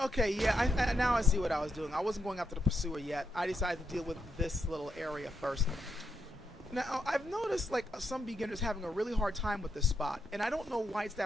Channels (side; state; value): both; normal; correlation 0.81